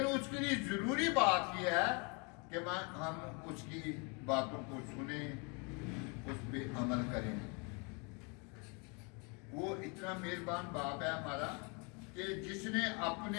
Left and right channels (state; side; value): quieter; right; 32.7 dB